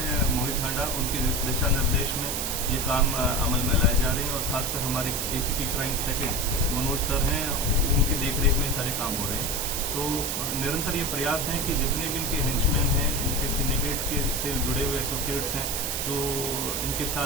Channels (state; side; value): noise; right; hiss, 1 dB below the sound